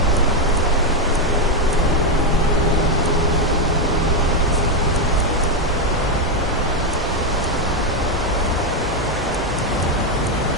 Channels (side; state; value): both; normal; correlation 0.06